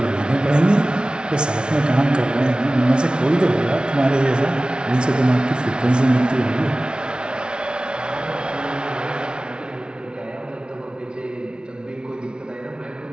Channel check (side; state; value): left; late; 0.056 ms